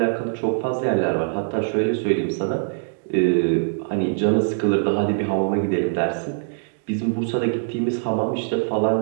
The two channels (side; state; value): left; silent; digital silence